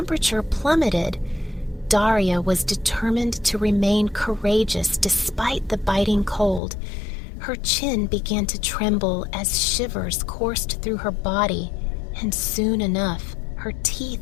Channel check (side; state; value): right; drops out; at 6.6 s